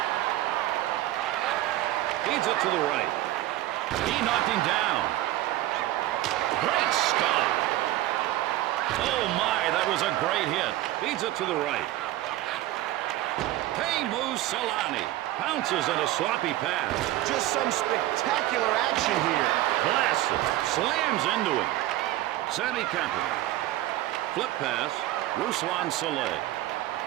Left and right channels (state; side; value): quieter; left; 15.4 dB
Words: Feeds it to the right. He knocked him down. Great stop. Oh, my, that was a great hit. Feeds it to the right. Teemu Selanne pounces in a sloppy pass. Just some spectacular action here. Blasts it. Slams into him. Sammy Kapanen. Flip pass. Ruslan Saleh.